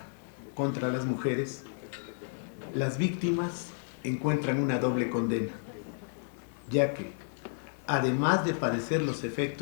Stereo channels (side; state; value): right; silent; digital silence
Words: contra las mujeres, las víctimas encuentran una doble condena, ya que, además de padecer los